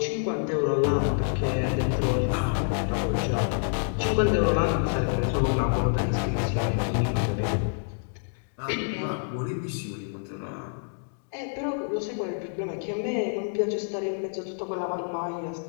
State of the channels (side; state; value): right; silent; digital silence